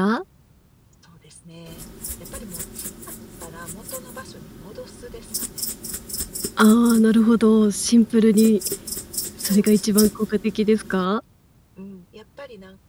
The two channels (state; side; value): identical; both; correlation 1.00